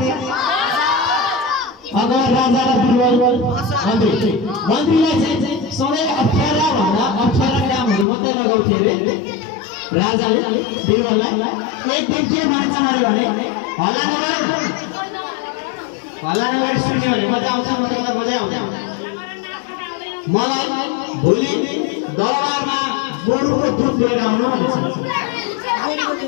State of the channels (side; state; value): right; drops out; at 8.1 s